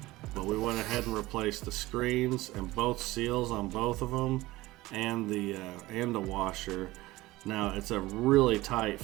But we went ahead and replaced the screens and both seals on both of them, and the washer. Now it's a really tight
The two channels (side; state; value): left; quieter; 18.8 dB